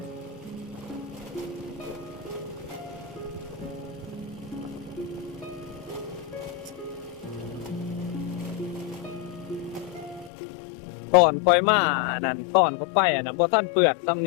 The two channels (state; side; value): drops out; right; at 10.3 s